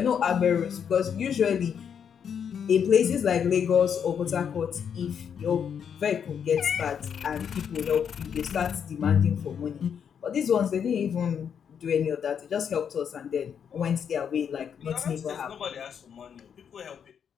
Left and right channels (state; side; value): quieter; right; 7.7 dB